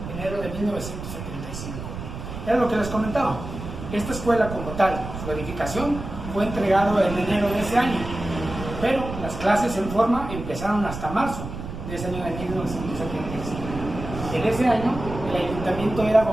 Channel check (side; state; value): right; noise; rumble, 9 dB below the sound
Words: enero de 1975. Era lo que les comentaba. Esta escuela como tal, su edificación, fue entregado en enero de ese año, pero las clases en forma empezaron hasta marzo de ese año de 1975. En ese año, el ayuntamiento era